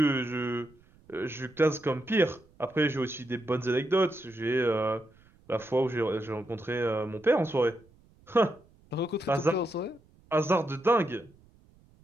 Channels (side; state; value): right; noise; rumble, 29 dB below the sound